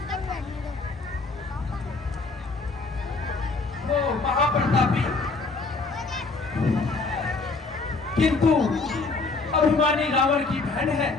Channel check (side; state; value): right; quieter; 3.8 dB